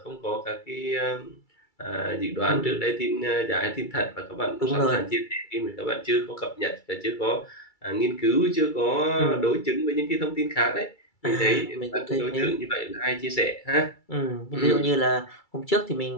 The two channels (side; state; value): right; late; 2.3 ms